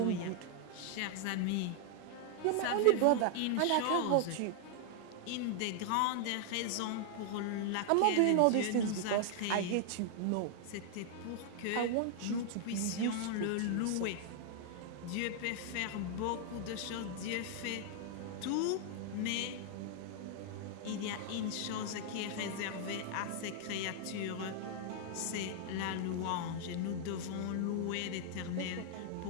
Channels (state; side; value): different; both; correlation 0.00